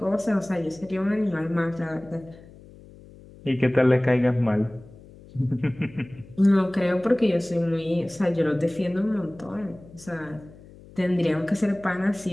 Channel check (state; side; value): noise; left; hum, 21 dB below the sound